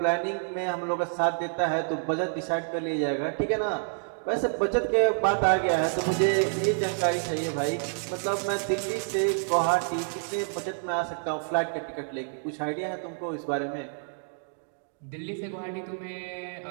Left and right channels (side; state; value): left; silent; digital silence